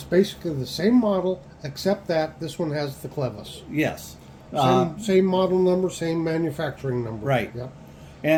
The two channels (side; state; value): both; identical; correlation 1.00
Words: basically the same model, except that this one has the clevis. Yes. Same model number, same manufacturing number. Right. Yep.